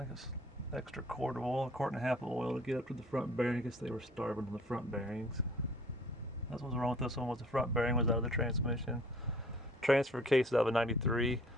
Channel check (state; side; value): normal; both; correlation 0.53